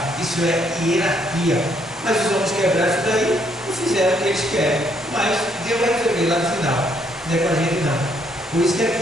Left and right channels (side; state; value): both; normal; correlation 0.70